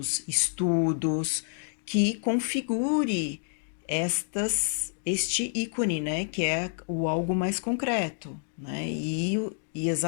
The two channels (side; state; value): right; silent; digital silence